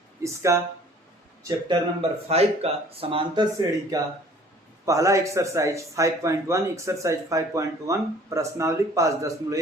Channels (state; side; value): normal; both; correlation 0.53